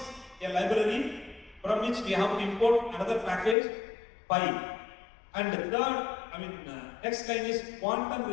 a library from which we have to import another package, Pi. And the third, next line is quantum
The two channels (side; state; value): right; drops out; at 3.6 s